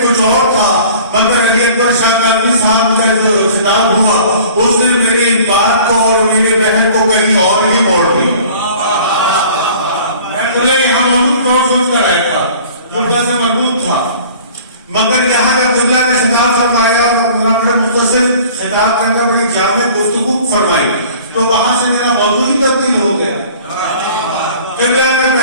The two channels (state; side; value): inverted; both; correlation -0.47